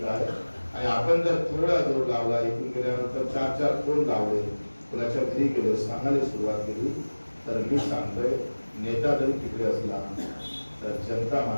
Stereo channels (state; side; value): inverted; both; correlation -1.00